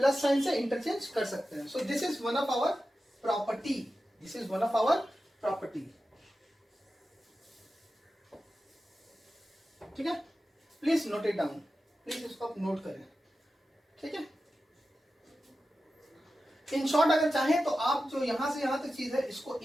sign से interchange कर सकते हैं। So this is one of our property, ठीक है। Please note it down, please इसको आप नोट करें, ठीक है। इन शॉर्ट अगर चाहें तो आप जो यहां से यहां तक चीज है इसको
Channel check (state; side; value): normal; both; correlation 0.93